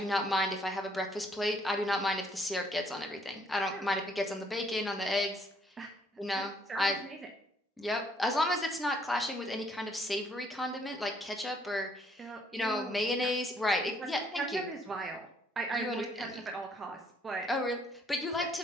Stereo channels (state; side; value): normal; both; correlation 0.66